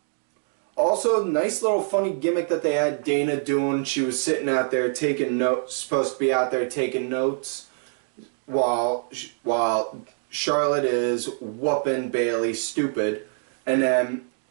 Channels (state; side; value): silent; left; digital silence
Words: Also, nice little funny gimmick that they had Dana doing. She was sitting out there taking notes, supposed to be out there taking notes, while Charlotte is whooping Bayley stupid. And then,